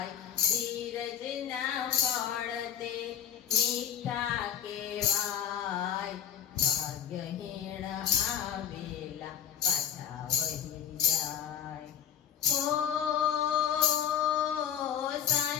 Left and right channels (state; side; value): quieter; right; 9.4 dB